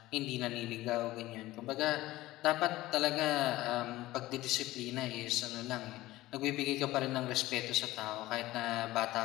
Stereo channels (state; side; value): quieter; right; 17.2 dB